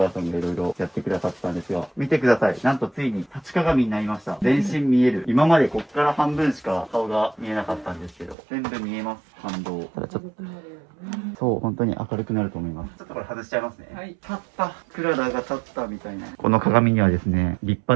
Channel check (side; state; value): left; drops out; at 8.3 s